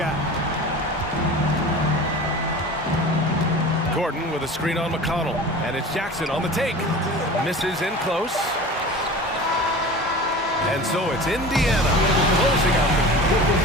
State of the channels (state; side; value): normal; both; correlation 0.36